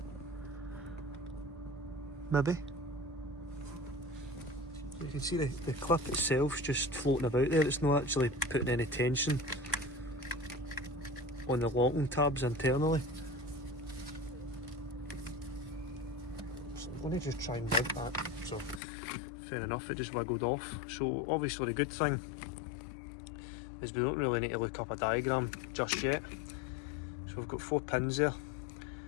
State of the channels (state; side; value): drops out; right; at 18.8 s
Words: Maybe. So you can see the clip itself's just floating about there, it's not actually putting any tension on the locking tabs internally. So I'm going to just try and mount that. So fair enough, it just wiggled off. So obviously the good thing is we don't really need to look up a diagram just yet. So we've got 4 pins there,